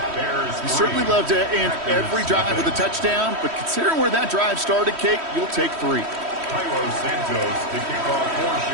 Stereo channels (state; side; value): late; left; 3.1 ms